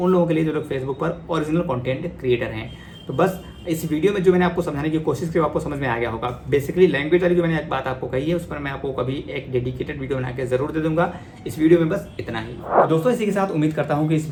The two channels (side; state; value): both; identical; correlation 1.00